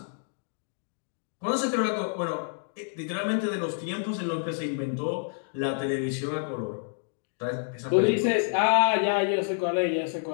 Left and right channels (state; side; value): silent; right; digital silence